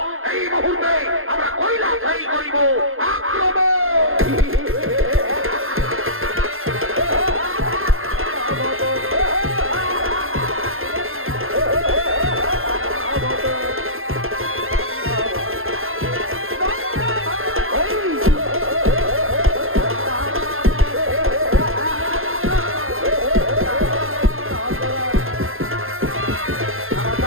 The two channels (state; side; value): late; left; 0.60 ms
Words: এই মুহূর্তে আমরা কৈলাসেই করিব আক্রমণ।